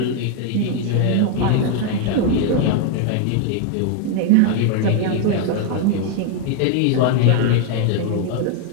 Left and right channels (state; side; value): different; both; correlation 0.00